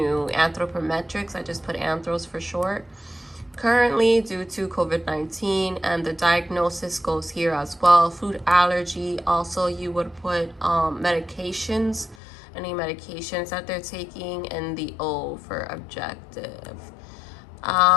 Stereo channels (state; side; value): drops out; right; at 12.2 s